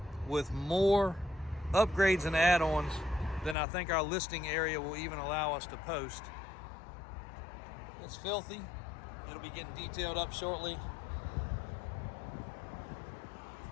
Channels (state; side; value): drops out; right; at 3.6 s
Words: with more upgrades and add-ons than I think our listing area will even allow us to post. It's filthy. It'll be getting detailed up shortly.